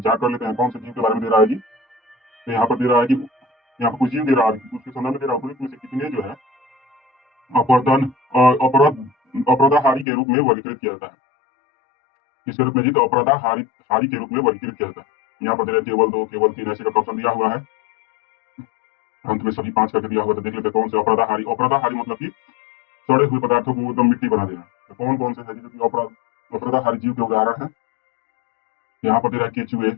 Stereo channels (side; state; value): right; drops out; at 10.1 s